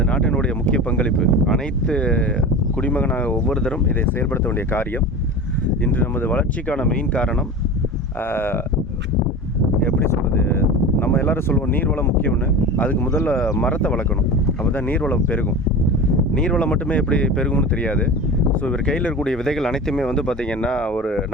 நாட்டினுடைய முக்கிய பங்களிப்பு. அனைத்து குடிமகனாக ஒவ்வொருத்தரும் இதை செயல்படுத்த வேண்டிய காரியம். இன்று நமது வளர்ச்சிக்கான மெயின் காரணம் எப்படி சொல்கிறது, நம்ம எல்லோரும் சொல்லுவோம் நீர்வளம் முக்கியம்னு. அதுக்கு முதல்ல மரத்தை வளர்க்கணும், அப்போ தான் நீர்வளம் பெருகும். நீர்வளம் மட்டுமே எப்படி பெருகும்னு தெரியாது. ஸோ இவர் கையில் இருக்கக்கூடிய விதைகள் அனைத்துமே பார்த்திங்கன்னா ஒரு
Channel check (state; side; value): normal; both; correlation 0.31